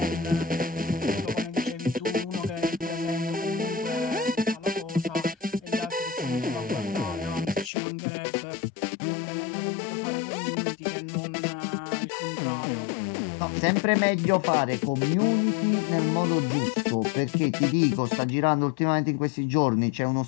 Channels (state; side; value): drops out; right; at 7.7 s